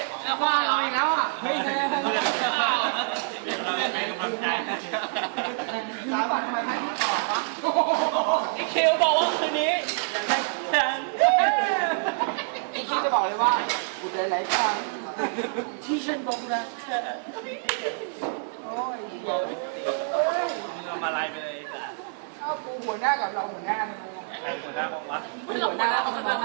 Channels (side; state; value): left; silent; digital silence